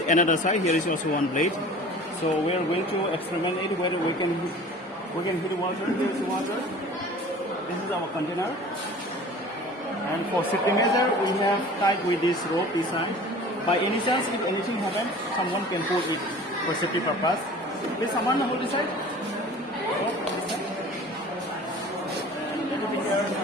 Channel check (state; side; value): normal; both; correlation 0.43